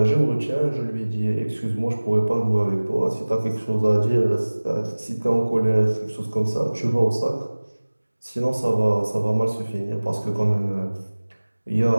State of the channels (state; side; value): inverted; both; correlation -1.00